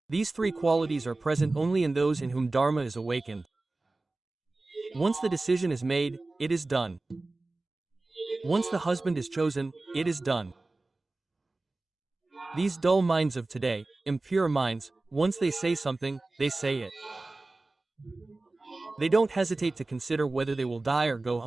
These three qualities are present only in those in whom Dharma is awakened. Once the decision is made, it is done. Once the husband is chosen, it is done. These dull minds of today, impure minds, once they say something, they say it. They don't hesitate to consider whether they will die or go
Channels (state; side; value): quieter; left; 3.1 dB